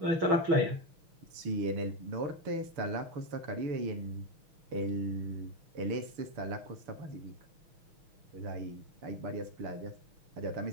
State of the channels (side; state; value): left; late; 6.3 ms